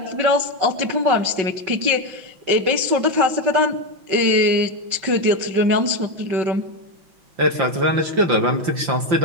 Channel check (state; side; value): late; left; 5.8 ms